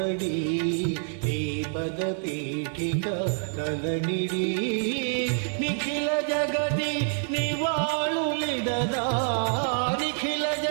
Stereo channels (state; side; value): silent; left; digital silence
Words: నీ పద పీఠిక తలనిడి నిఖిల జగతి నివాళులిడదా నిఖిల